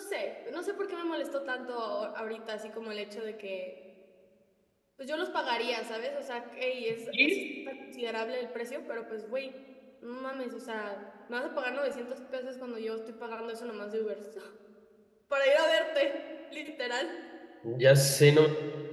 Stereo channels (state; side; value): identical; both; correlation 1.00